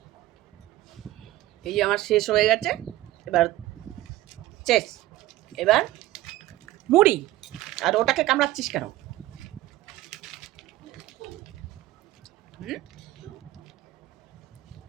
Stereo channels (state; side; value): quieter; left; 16.2 dB